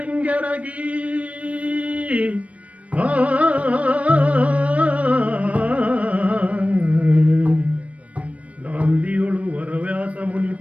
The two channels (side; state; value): left; late; 0.065 ms